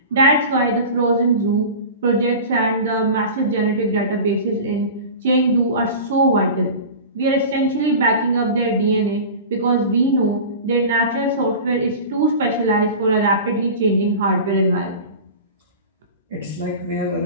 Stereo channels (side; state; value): both; inverted; correlation -0.33